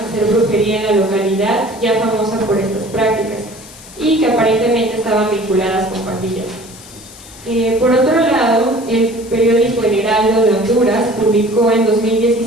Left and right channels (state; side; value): noise; left; hiss, 19 dB below the sound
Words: brujería en la localidad, ya famosa por estas prácticas, y que aparentemente estaban vinculadas con pandillas. Por otro lado, el periódico El Heraldo de Honduras publicó en